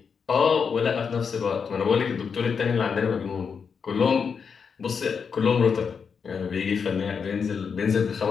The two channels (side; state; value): right; quieter; 6.1 dB